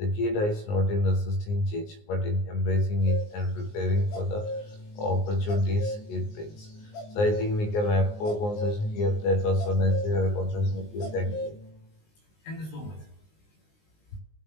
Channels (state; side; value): late; right; 19 ms